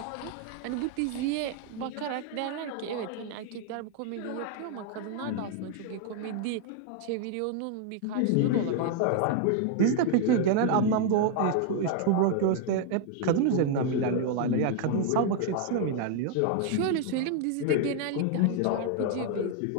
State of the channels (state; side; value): different; both; correlation 0.00